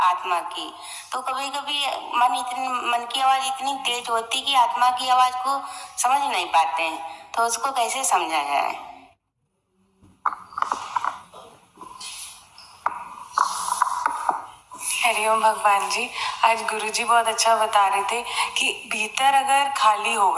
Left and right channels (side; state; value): both; identical; correlation 1.00